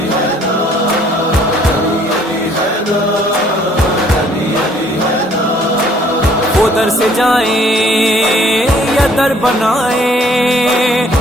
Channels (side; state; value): both; normal; correlation 0.60